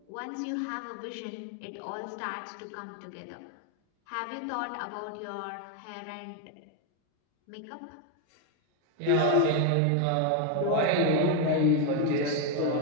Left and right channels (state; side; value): different; both; correlation 0.01